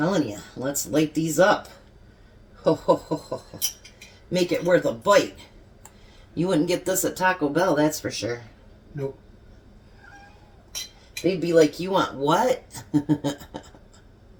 you, let's light these up. Ho, ho, ho, ho, ho. Make it worth a bite. You wouldn't get this at Taco Bell, that's for sure. Nope. They'd be like, you want what?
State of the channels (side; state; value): both; identical; correlation 1.00